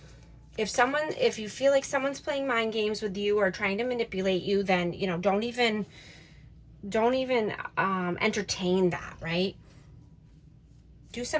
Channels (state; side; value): identical; both; correlation 1.00